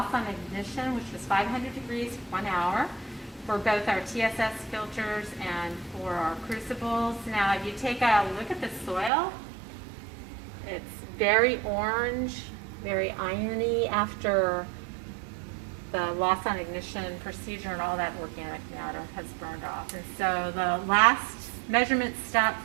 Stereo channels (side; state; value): left; drops out; at 9.1 s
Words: on ignition, which was 500 degrees for 1 hour for both our TSS filters and for our crucibles. Now, if you take a look at the soil, it's very orange, very irony after the loss on ignition procedure and all that organic matter has burned off. And so the last measurement step